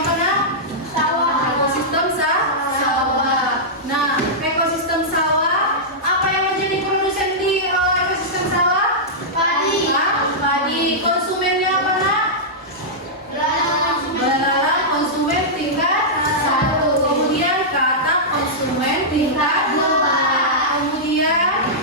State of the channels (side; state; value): both; normal; correlation -0.11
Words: nah? Sawah. Ekosistem sawah. Nah, ekosistem sawah apa yang menjadi produsen di ekosistem sawah? Padi. Padi. Konsumennya apa nak? Belalang konsumen tingkat 1. Kemudian kata konsumen tingkat 2. Kemudian